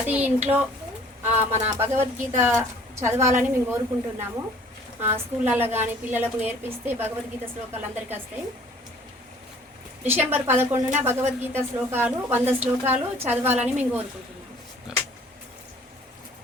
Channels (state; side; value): normal; both; correlation 0.53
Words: ఇంట్లో మన భగవద్గీత చదవాలని మేము కోరుకుంటున్నాము. స్కూళ్ళల్లో కానీ పిల్లలకు నేర్పిస్తే భగవద్గీత శ్లోకాలు అందరికీ వస్తాయి. డిసెంబర్ 11న భగవద్గీత శ్లోకాలు 100 శ్లోకాలు చదవాలని మేము కోరుకుంటున్నాము.